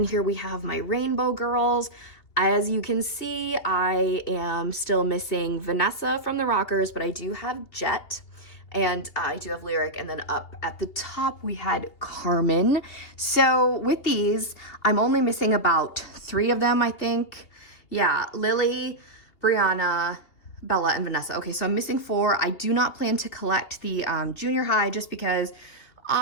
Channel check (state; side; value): late; right; 2.8 ms